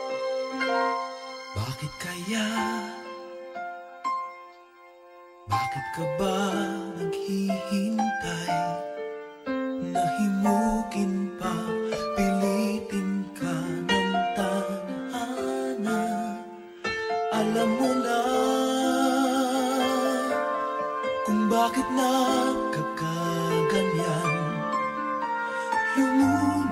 Bakit kaya? Bakit ka ba naghihintay? Nahimukin pa, pilitin ka ng tadhana. Alam mo na kung bakit nagkakaganyan.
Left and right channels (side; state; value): both; identical; correlation 1.00